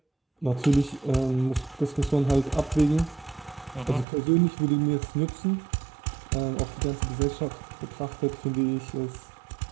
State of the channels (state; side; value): drops out; left; at 4.0 s